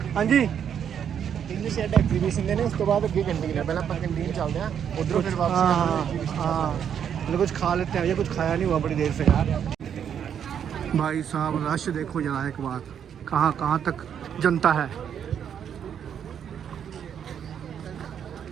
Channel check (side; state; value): left; quieter; 8.5 dB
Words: हाँ जी इंग्लिश एग्जीबिशन देने उस तो बाद अगे कैंटीन है, पहले अपन कैंटीन चलते हैं उधरों फिर वापस। हाँ मतलब कुछ खा लेते हैं, ये कुछ खाया नहीं हुआ बड़ी देर से यार। भाई साहब रश देखो जरा एक बार, कहाँ कहाँ तक जनता है।